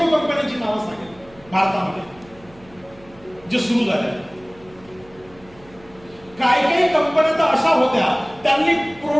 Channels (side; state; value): right; noise; hum, 25 dB below the sound